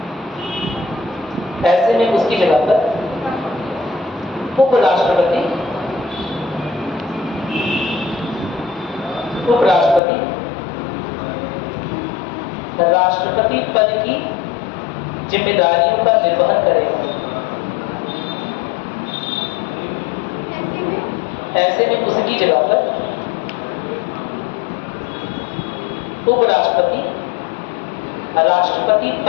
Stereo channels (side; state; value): right; drops out; at 10.0 s